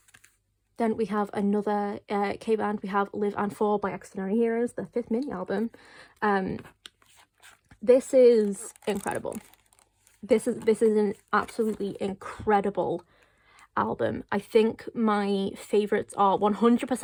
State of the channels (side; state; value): both; identical; correlation 1.00